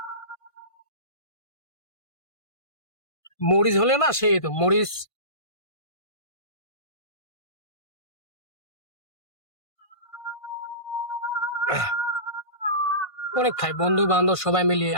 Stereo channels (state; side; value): late; right; 1.5 ms